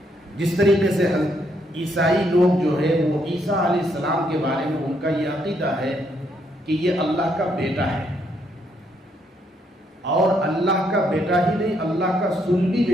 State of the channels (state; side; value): normal; both; correlation 0.74